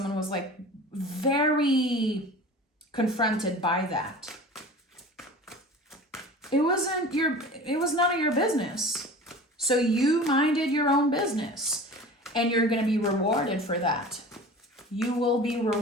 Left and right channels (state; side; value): normal; both; correlation 0.38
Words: was like very confronted by that. It was none of your business. So you minded your own business and you're going to be rewarded for that. You will be